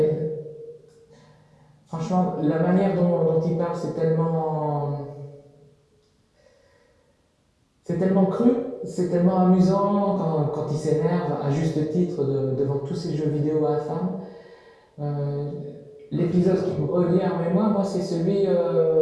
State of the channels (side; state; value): both; identical; correlation 1.00